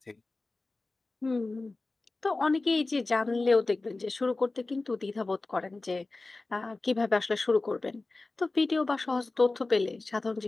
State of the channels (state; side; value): quieter; right; 3.3 dB